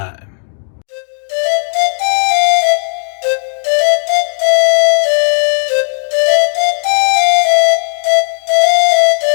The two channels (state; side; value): silent; right; digital silence